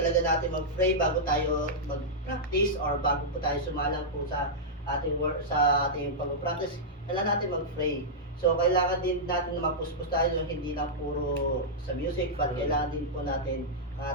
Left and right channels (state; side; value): normal; both; correlation -0.09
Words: natin mag-pray bago tayo mag-practice or bago po tayo sumalang po sa ating pag-practice. Kailangan natin mag-pray. So, kailangan din natin na mapuspos tayo, hindi lang puro sa music, but kailangan din po natin